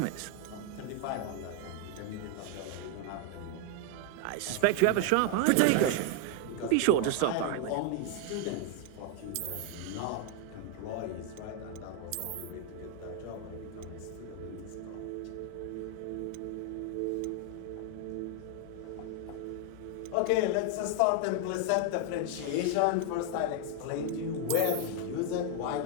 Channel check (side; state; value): both; different; correlation 0.01